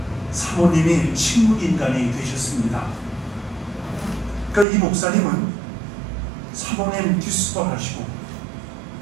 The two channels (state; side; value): drops out; left; at 4.7 s